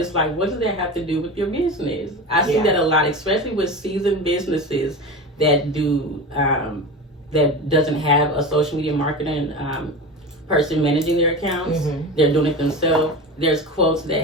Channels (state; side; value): normal; both; correlation 0.27